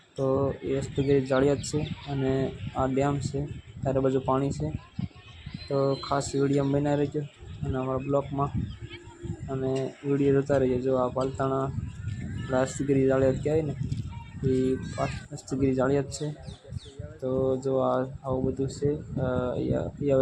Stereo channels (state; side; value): identical; both; correlation 1.00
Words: તો એ હસ્તગીરી જાળિયાદ છે અને આ ડેમ છે, ચારે બાજુ પાણી છે. તો ખાસ વિડીયો બનાવી રહેજો અને અમારા બ્લોગમાં અને વિડીયો જોતા રહીજો. જો આ પાલતાણા હસ્તગીરી જાળિયાદ કહેવાય ને એ હસ્તગીરી જાળિયાદ છે. તો જો આવું બધું છે